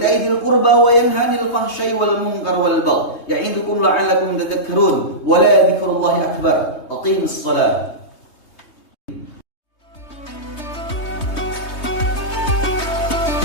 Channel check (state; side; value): late; right; 3.2 ms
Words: ذي القربى وينهى عن الفحشاء والمنكر والبغي يعظكم لعلكم تذكرون ولا ذكر الله أكبر. أقيموا الصلاة.